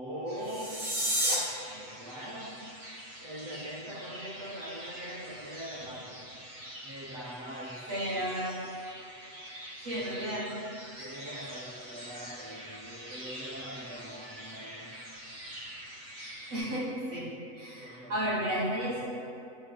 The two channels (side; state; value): left; late; 8.0 ms